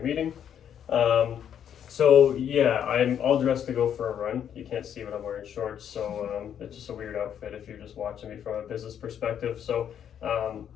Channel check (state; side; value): quieter; right; 9.1 dB